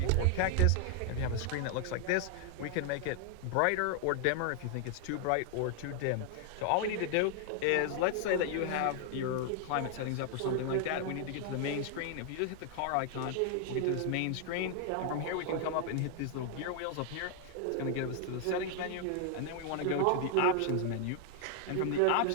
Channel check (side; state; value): both; different; correlation 0.00